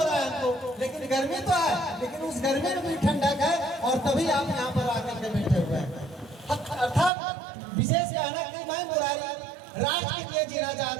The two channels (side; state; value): left; drops out; at 7.1 s